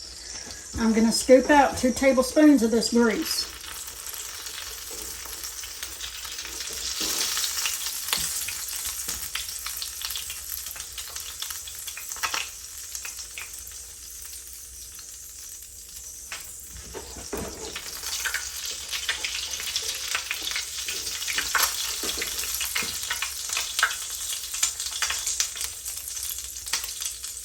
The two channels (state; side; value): identical; both; correlation 1.00